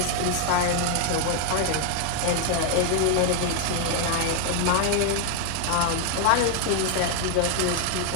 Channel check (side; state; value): both; different; correlation 0.00